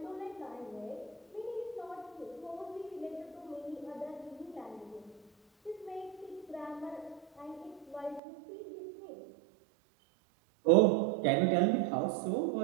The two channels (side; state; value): left; drops out; at 8.2 s